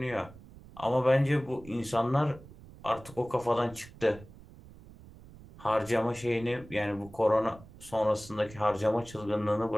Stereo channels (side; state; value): right; noise; rumble, 19 dB below the sound